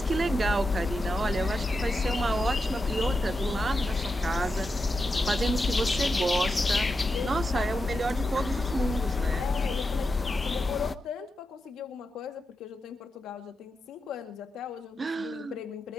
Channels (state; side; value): normal; both; correlation 0.88